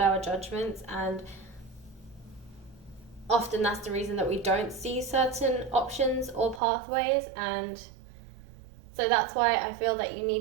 our judgments, and often that's the reason that we don't see certain options or pathways. And so that's why I feel that you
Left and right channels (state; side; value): drops out; left; at 6.6 s